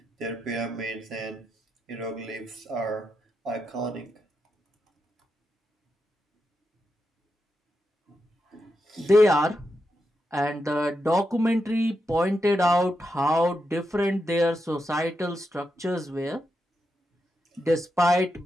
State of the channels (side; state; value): both; normal; correlation 0.86